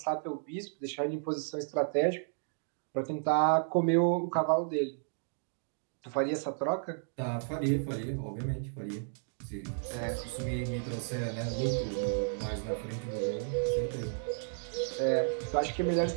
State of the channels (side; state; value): left; silent; digital silence